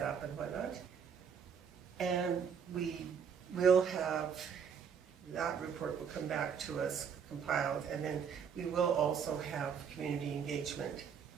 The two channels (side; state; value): left; quieter; 7.0 dB